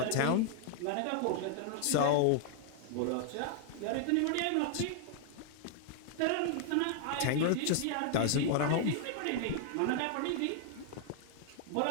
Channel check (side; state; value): both; different; correlation 0.00